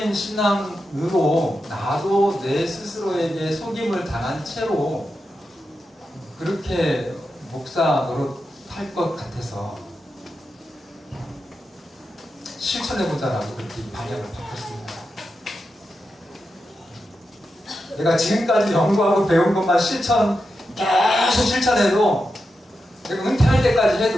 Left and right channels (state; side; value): normal; both; correlation 0.88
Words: 신앙으로 나도 내 스스로에게 속임을 당한 채로 그렇게 목사 노릇할 것 같아서 실천해보자라고 그렇게 방향을 바꿨습니다. 내가 지금까지 연구하고 배운 것만 계속 실천해도 내가 은퇴할 때까지